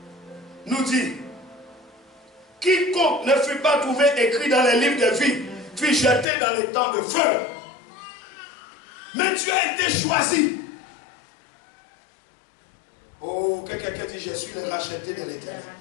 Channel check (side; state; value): right; drops out; at 6.2 s